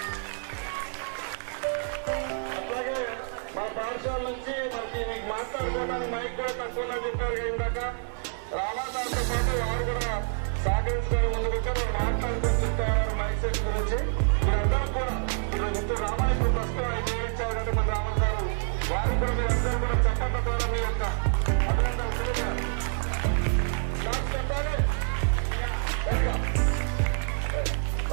అట్లాగే మా పాఠశాల నుంచి మీకు మాట్లాడుకోవడానికి మైక్ కూడా తక్కువ చెప్పారు ఇందాక. రామాదాంతో పాటు వారు కూడా సహకరించుకొని ముందుకు వచ్చి మాట్లాడుకొని చెప్తారు మైక్ సెట్ గురించి. మీరందరూ కూడా ఇప్పుడు రామాయణ ప్రస్తుతం ఆయన ఇచ్చారు కాబట్టి మన రామన్ గారు వారు కూడా మీరందరూ కూడా చెప్పడం ద్వారా మీ యొక్క అభినందనలు తెలియజేయాలి. చెప్పాలి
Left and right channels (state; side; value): silent; left; 60 dB below the other